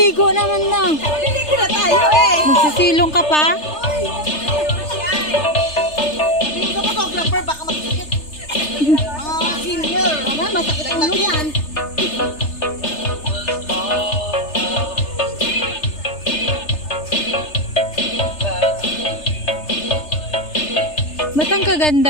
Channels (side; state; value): right; late; 3.3 ms